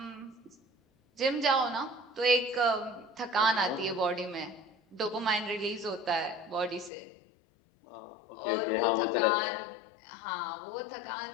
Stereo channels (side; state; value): right; drops out; at 6.9 s